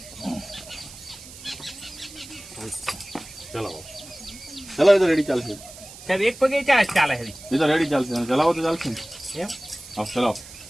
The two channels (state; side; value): noise; right; hiss, 16 dB below the sound